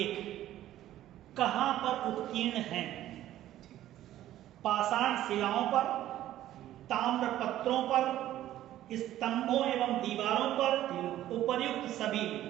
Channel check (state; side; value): quieter; left; 13.3 dB